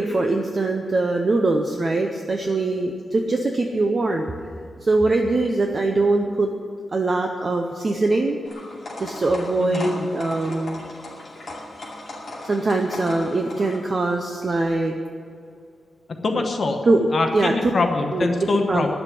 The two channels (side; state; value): both; normal; correlation 0.89